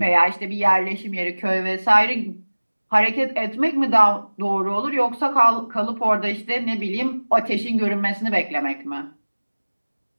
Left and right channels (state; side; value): inverted; both; correlation -1.00